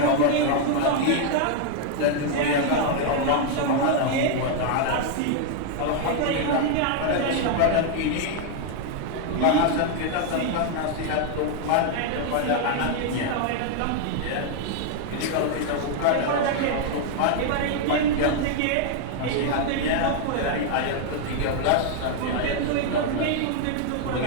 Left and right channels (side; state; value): both; different; correlation 0.00